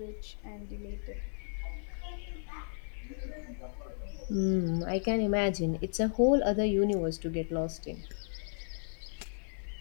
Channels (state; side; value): silent; right; digital silence